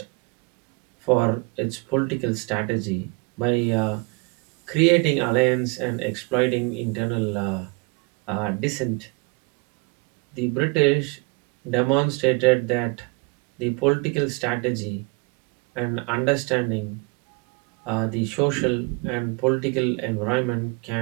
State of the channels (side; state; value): left; quieter; 29.9 dB